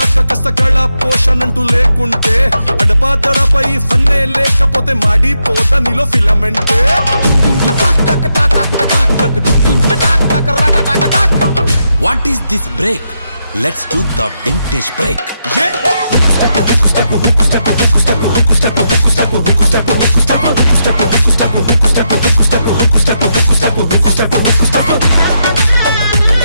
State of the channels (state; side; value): inverted; both; correlation -0.82